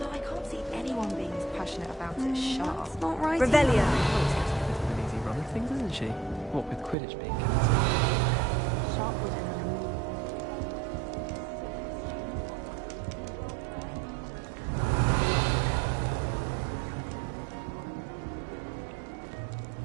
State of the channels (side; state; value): left; drops out; at 7.0 s